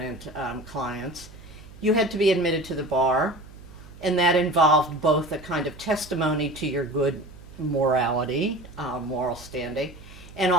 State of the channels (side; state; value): right; noise; hum, 19 dB below the sound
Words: clients, you had to be admitted to the bar, and that involved both a kind of testimony to your good morality, moral standing, and